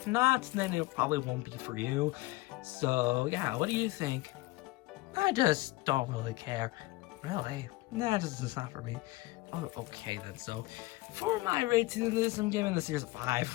not, then it probably won't be for you. So yeah, what do you think? I just don't really care. Really? No, it's not for me. Oh, okay then. So, for my rating of this, I'm giving this series a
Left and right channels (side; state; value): right; quieter; 20.5 dB